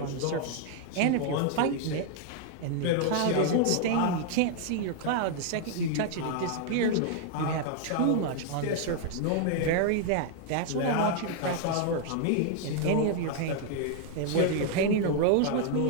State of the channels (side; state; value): both; different; correlation 0.00